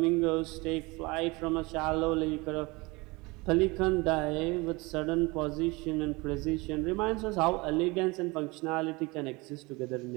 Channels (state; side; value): quieter; left; 24.8 dB